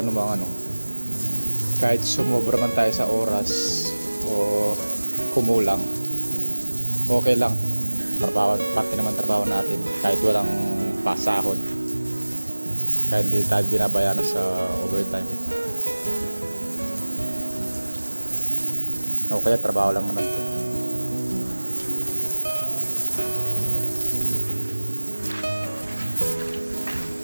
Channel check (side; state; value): both; inverted; correlation -1.00